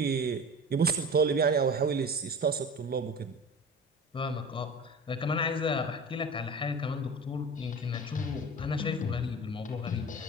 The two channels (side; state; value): both; normal; correlation 0.34